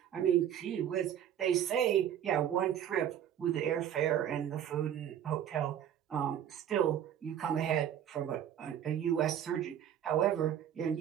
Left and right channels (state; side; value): quieter; left; 10.0 dB